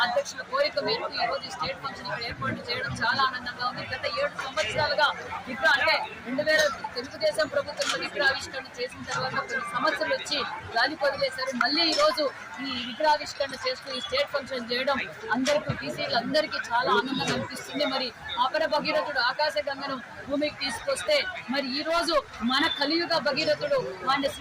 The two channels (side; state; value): both; identical; correlation 1.00